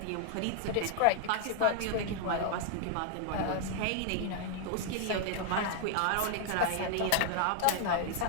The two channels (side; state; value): both; different; correlation 0.00